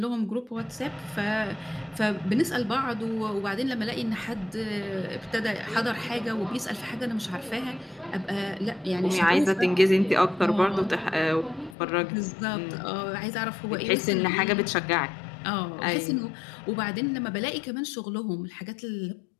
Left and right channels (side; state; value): right; drops out; at 11.8 s